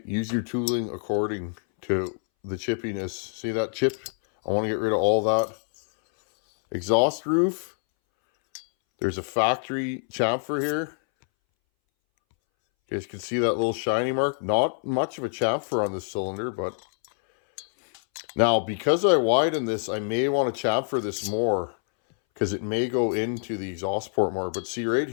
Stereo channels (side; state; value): right; silent; 61 dB below the other